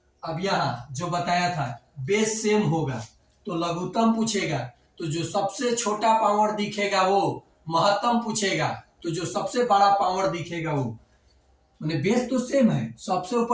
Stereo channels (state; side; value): identical; both; correlation 1.00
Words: अब यहाँ जो बताया था बेस सेम होगा तो लघुत्तम पूछेगा, तो जो सबसे छोटा पावर दिखेगा वो महत्तम पूछेगा, तो जो सबसे बड़ा पावर दिखेगा वो, मैंने बेस तो सेम है, सबसे